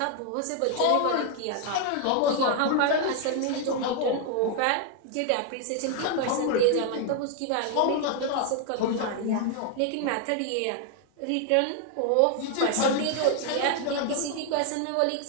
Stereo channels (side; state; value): both; different; correlation 0.00